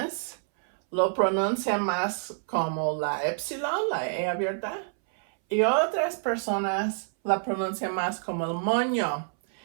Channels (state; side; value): silent; left; 60 dB below the other